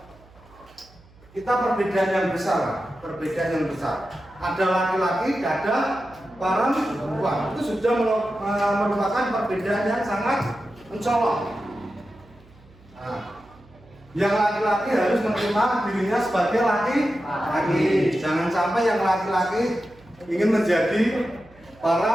kita perbedaan yang besar. Ada laki-laki, ada perempuan. Itu sudah merupakan perbedaan yang sangat mencolok. Nah, yang laki-laki harus menerima dirinya sebagai laki-laki. Jangan sampai yang laki-laki ingin menjadi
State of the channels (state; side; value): noise; right; hum, 26 dB below the sound